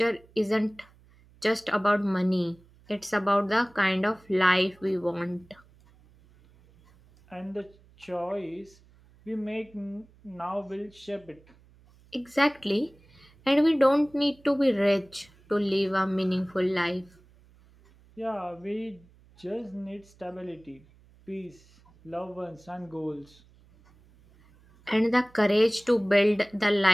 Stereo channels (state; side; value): noise; right; hum, 28 dB below the sound